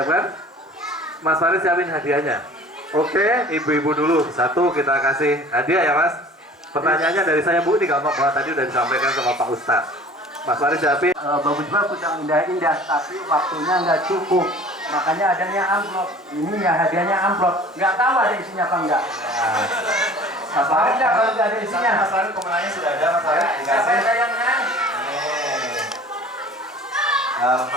Mas Farid siapin hadiahnya. Oke, ibu-ibu dulu satu kita kasih hadiah ya Mas. Pertanyaannya dari saya Bu, ini gampang banget, tadi udah disampaikan sama Pak Ustadz. Mas Farid siapin. Bagus-bagus yang indah-indah, tapi waktunya nggak cukup. Makanya adanya amplop. Ini ya hadiahnya amplop. Nggak tahu ada isinya apa enggak. Nah, Mas Farid nggak kalau nggak ada isinya. Mas Farid pemenangnya sudah ada Mas Farid. Siapa yang menang?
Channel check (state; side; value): normal; both; correlation 0.46